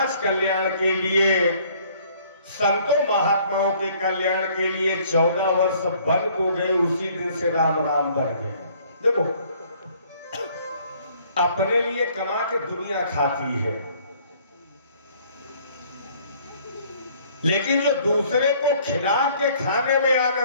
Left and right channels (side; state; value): both; inverted; correlation -0.59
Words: कल्याण के लिए, संतों महात्माओं के कल्याण के लिए 14 वर्ष वन को गए, उसी दिन से राम राम बन गए। देखो, अपने लिए कमा के दुनिया खाती है, लेकिन जो दूसरे को खिला के खाने में